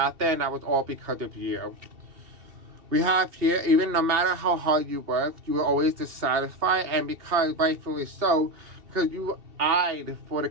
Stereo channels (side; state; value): left; late; 2.7 ms